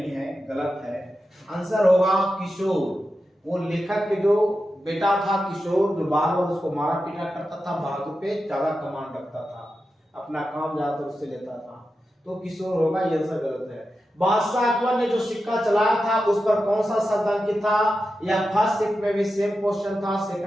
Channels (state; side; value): normal; both; correlation 0.90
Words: है, गलत है। आंसर होगा किशोर, वो लेखक के जो बेटा था किशोर, जो बार बार उसको मारा पीटा करता था, बहादुर पे ज्यादा कमांड रखता था, अपना काम ज्यादातर उससे लेता था, तो किशोर होगा, ये आंसर गलत है। बादशाह अकबर ने जो सिक्का चलाया था उस पर कौन सा शब्द अंकित था, या फर्स्ट शिफ्ट में भी सेम क्वेश्चन था,